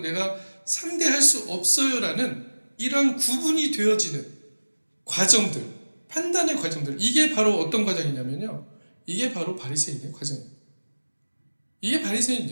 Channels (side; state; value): both; inverted; correlation -1.00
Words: 내가 상대할 수 없어요 라는 이런 구분이 되어지는 과정들, 판단의 과정들, 이게 바로 어떤 과정이냐면요, 이게 바로 바리새인의 과정이에요. 이게